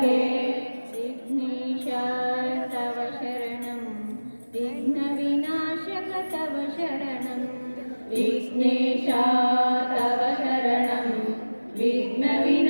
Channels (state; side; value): inverted; both; correlation -1.00